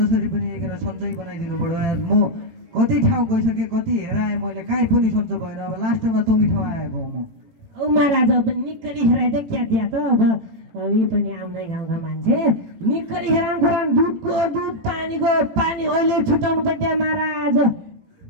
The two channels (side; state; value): left; late; 18 ms